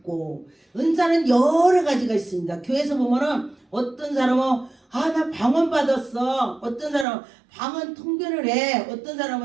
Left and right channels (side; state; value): left; drops out; at 7.1 s